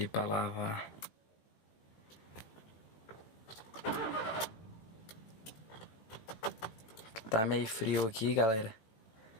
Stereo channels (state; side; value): late; right; 18 ms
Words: pra lavar. Tá meio frio aqui, galera.